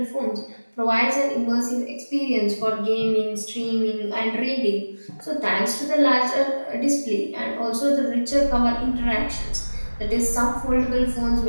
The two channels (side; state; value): both; inverted; correlation -1.00